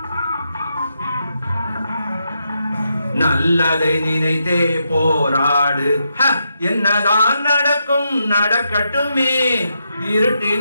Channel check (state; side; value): inverted; both; correlation -0.82